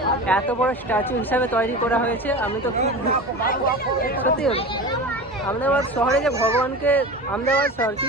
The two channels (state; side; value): normal; both; correlation 0.31